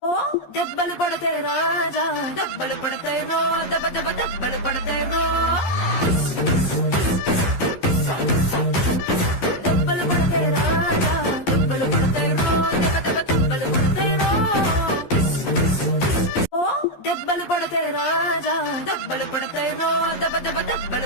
ఓ దెబ్బలు పడతాయి రాజా, దెబ్బలు పడతాయి రో, దెబ్బ దెబ్బ దెబ్బలు పడతాయి రో. దెబ్బలు పడతాయి రాజా, దెబ్బలు పడతాయి రో, దెబ్బ దెబ్బ దెబ్బలు పడతాయి రో. ఓ దెబ్బలు పడతాయి రాజా, దెబ్బలు పడతాయి రో, దెబ్బ దెబ్బ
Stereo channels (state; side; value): late; right; 11 ms